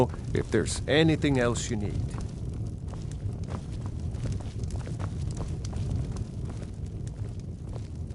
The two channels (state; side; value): identical; both; correlation 1.00